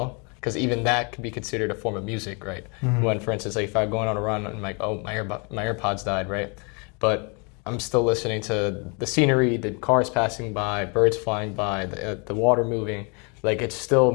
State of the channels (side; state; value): right; quieter; 33.6 dB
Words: because even that could be considered a form of music, right? When, for instance, like if I'm going on a run and I'm like, oh, my AirPods died, right? But I'm still listening to the scenery, the cars passing by, birds flying by, the water moving. Like it's still